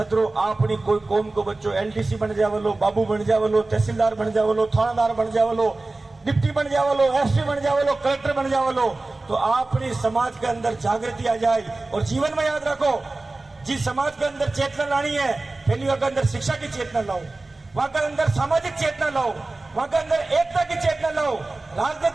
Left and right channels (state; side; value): quieter; left; 3.1 dB